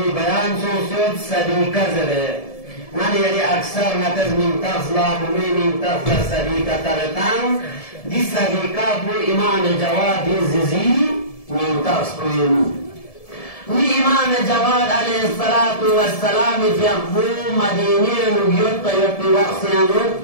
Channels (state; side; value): late; right; 1.7 ms